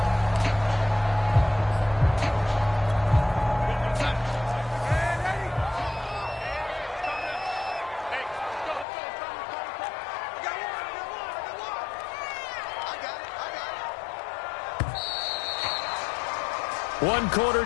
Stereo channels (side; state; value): right; drops out; at 8.8 s